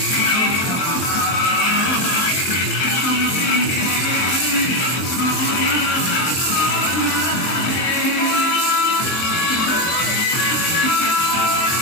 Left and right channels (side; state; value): right; late; 23 ms